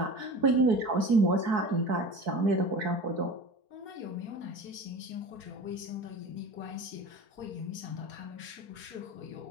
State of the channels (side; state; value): left; late; 4.6 ms